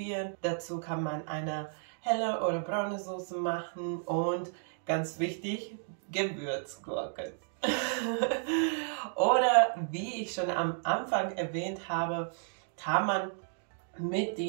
Dazu kann man eine helle oder braune Soße machen und ganz wichtig, Gewürzgurken. Oder wie ich schon am Anfang erwähnt habe, kann man mit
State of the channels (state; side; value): silent; left; digital silence